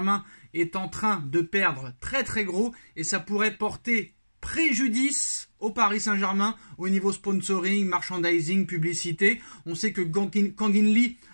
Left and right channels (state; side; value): inverted; both; correlation -1.00